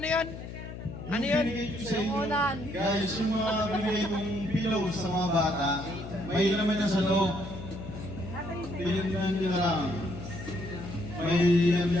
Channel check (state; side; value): noise; left; hum, 10 dB below the sound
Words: yun? Binigay ko sa inyo, Ulan. guys, yung mga binigay mong pillows sa mga bata, may laman yan sa loob. Pinagyan nyo na lang. May yan